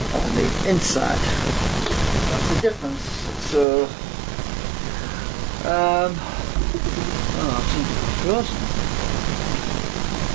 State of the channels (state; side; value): drops out; left; at 3.7 s